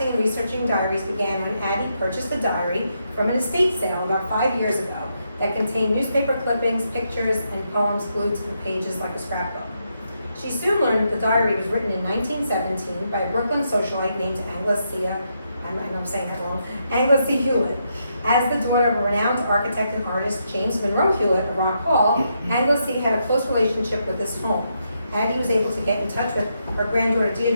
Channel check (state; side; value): inverted; both; correlation -0.80